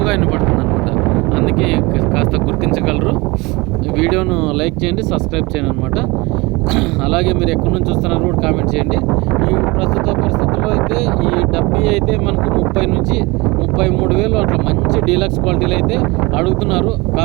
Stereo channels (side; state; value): left; quieter; 24.2 dB